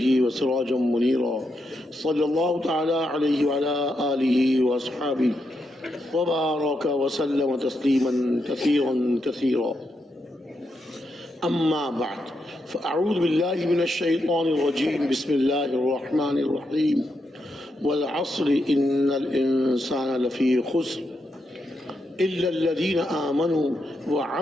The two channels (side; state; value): both; normal; correlation 0.83